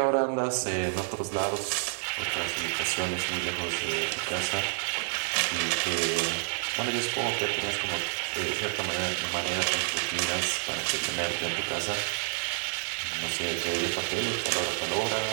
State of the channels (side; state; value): left; silent; digital silence